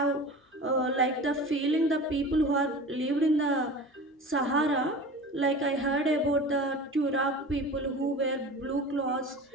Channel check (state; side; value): normal; both; correlation 0.36